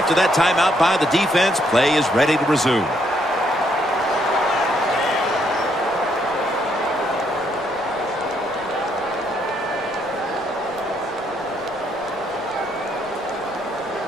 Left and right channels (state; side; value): noise; right; rumble, 25 dB below the sound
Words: that timeout by the defense, play is ready to resume.